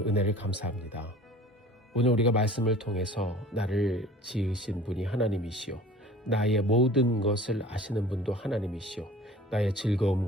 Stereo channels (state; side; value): normal; both; correlation 0.45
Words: 감사합니다. 오늘 우리가 말씀을 통해서 나를 지으신 분이 하나님이시오. 나의 모든 것을 아시는 분도 하나님이시오. 나의